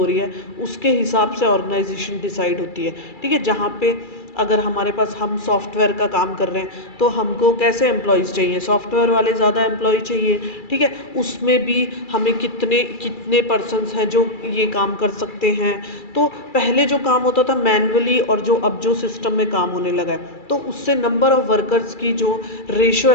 रही है उसके हिसाब से ऑर्गेनाइजेशन डिसाइड होती है। ठीक है। जहाँ पे अगर हमारे पास, हम सॉफ्टवेयर का काम कर रहे हैं तो हमको कैसे एम्प्लॉयज़ चाहिए, सॉफ्टवेयर वाले ज़्यादा एम्प्लॉय चाहिए। ठीक है। उसमें भी हमें कितने कितने पर्सन्स हैं जो ये काम कर सकते हैं। तो पहले जो काम होता था मैन्युअली, और जो अब जो सिस्टम में काम होने लगा है, तो उससे नंबर ऑफ़ वर्कर्स की जो रेशो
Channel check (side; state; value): right; late; 2.3 ms